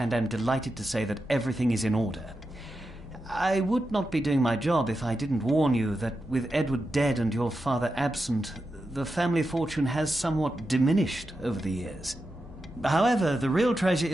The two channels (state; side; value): normal; both; correlation 0.89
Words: am delighted to say that everything is in order. I would not be doing my job if I didn't warn you that with Edward dead and your father absent, the family fortune has somewhat diminished over the years. However, the real treasure